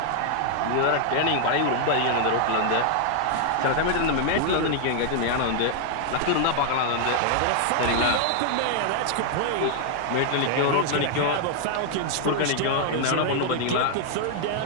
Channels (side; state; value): both; different; correlation 0.00